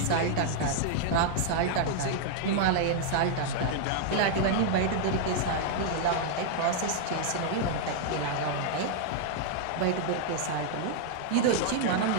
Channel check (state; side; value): different; both; correlation -0.01